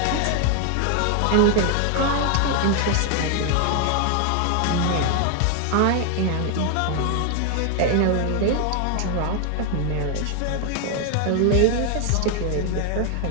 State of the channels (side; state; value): both; different; correlation 0.00